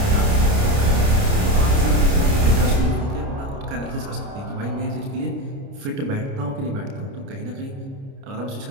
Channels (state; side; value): late; left; 29 ms